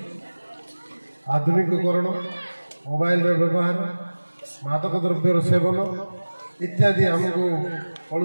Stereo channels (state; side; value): inverted; both; correlation -1.00